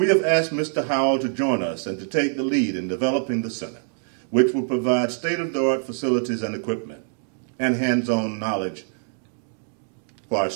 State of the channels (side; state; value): left; silent; digital silence